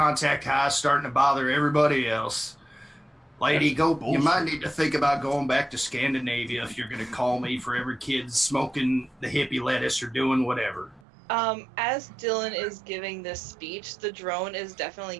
high is starting to bother everybody else. Lady, you might need to think about going back to Scandinavia if you're going to call me for every kid smoking the hippie lettuce or doing whatever. As Dylan is giving this speech, the drone is definitely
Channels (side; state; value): left; drops out; at 11.1 s